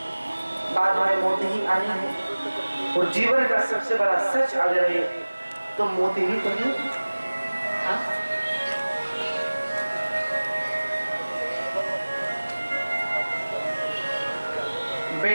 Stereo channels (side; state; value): both; inverted; correlation -1.00